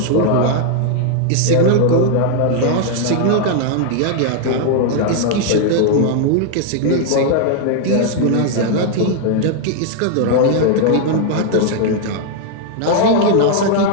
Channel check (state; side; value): different; both; correlation 0.00